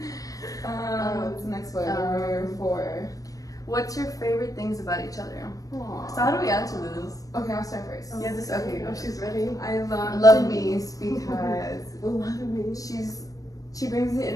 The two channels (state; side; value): late; right; 0.17 ms